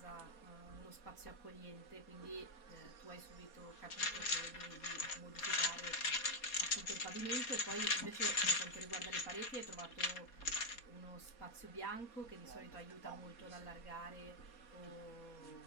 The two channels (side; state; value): right; late; 4.2 ms